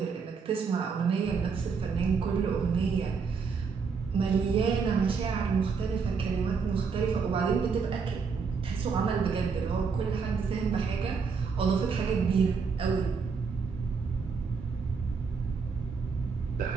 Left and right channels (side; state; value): left; quieter; 5.4 dB